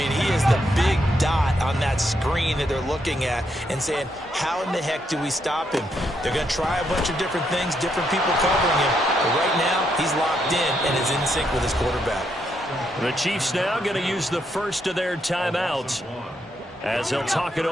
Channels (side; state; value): both; normal; correlation 0.78